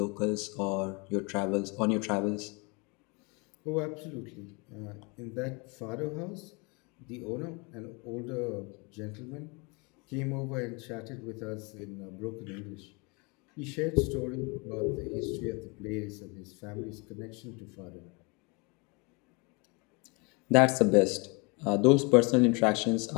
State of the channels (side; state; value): right; quieter; 30.0 dB